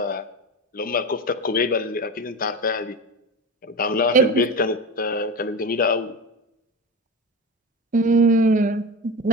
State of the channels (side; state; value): both; normal; correlation 0.24